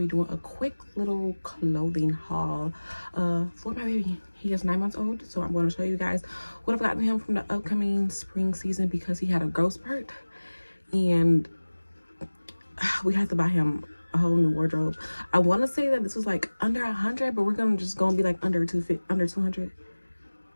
doing a quick little clothing haul for my baby. He is 9 months old, so I'm going to show you guys what I've gotten him from the upcoming spring season, because he had a growth spurt and we had to buy him a whole new wardrobe. I want to say that this was like under 100, but we're gonna be like under 200.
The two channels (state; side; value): inverted; both; correlation -1.00